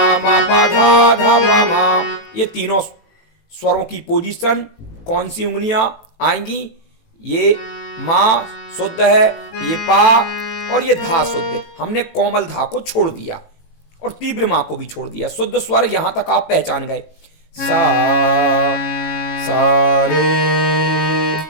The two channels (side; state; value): right; late; 18 ms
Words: मा पा धा, धा पा मा। ये तीनों स्वरों की पोजीशन, कौन सी उंगलियां आएंगी? ये मा शुद्ध है, ये पा और ये धा शुद्ध है। हमने कोमल धा को छोड़ दिया और तीव्र मा को भी छोड़ दिया। शुद्ध स्वर यहां तक आप पहचान गए। सा सा रे